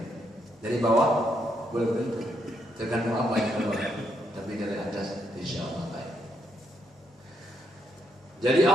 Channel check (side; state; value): both; normal; correlation 0.77